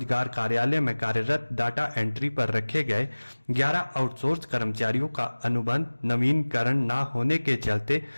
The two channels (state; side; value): inverted; both; correlation -1.00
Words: कार्यालय में कार्यरत डाटा एंट्री पर रखे गए 11 आउटसोर्स कर्मचारियों का अनुबंध नवीनीकरण न होने के चलते